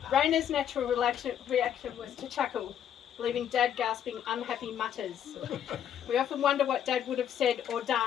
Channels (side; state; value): right; quieter; 9.5 dB